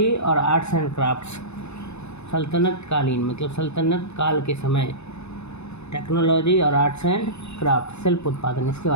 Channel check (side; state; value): right; late; 0.81 ms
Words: और आर्ट्स एंड क्राफ्ट्स। सल्तनत कालीन मतलब सल्तनत काल के समय, टेक्नोलॉजी और आर्ट्स एंड क्राफ्ट, शिल्प उत्पादन, इसके